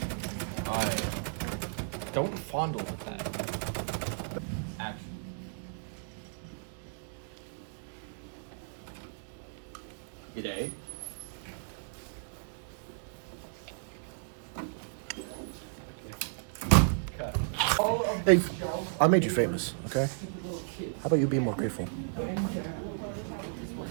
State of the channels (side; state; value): left; silent; digital silence